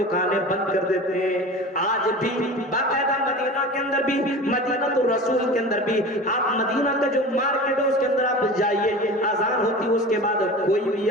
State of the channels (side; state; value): both; normal; correlation 0.34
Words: بند کر دیتے ہیں۔ آج بھی باقاعدہ مدینہ کے اندر بھی، مدینہ تو رسول کے اندر بھی، آپ مدینہ کا جو مارکیٹ ہے اس کے اندر آپ جائیے، آزان ہوتی ہے اس کے بعد کوئی بھی